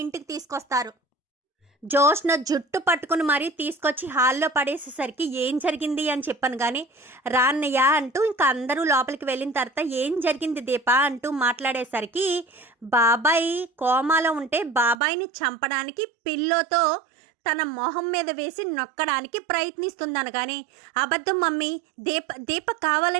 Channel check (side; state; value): left; drops out; at 15.0 s